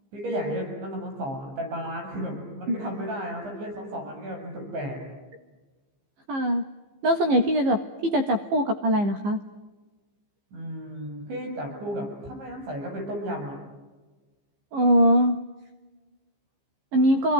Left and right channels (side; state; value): left; late; 15 ms